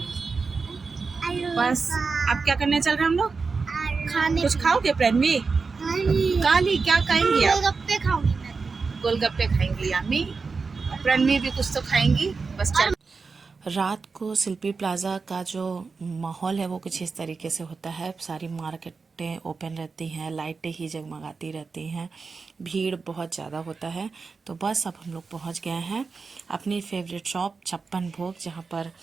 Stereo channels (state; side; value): quieter; left; 4.6 dB